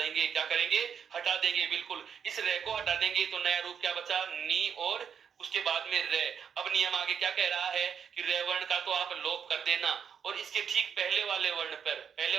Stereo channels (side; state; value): left; quieter; 7.4 dB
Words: क्या करेंगे? हटा देंगे। बिल्कुल, इस रे को हटा देंगे तो नया रूप क्या बचा? नी, और उसके बाद में रे। अब नियम आगे क्या कह रहा है, कि रे वर्ण का तो आप लोप कर देना, और इसके ठीक पहले वाले वर्ण पर, पहले